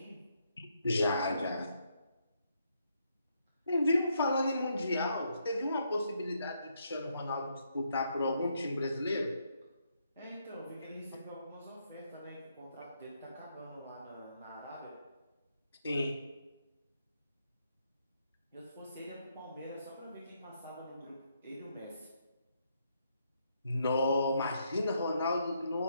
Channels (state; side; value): inverted; both; correlation -0.76